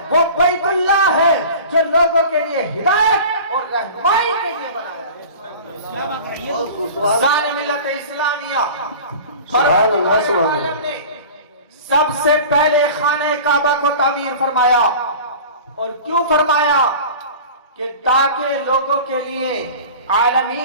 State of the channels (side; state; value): both; inverted; correlation -0.38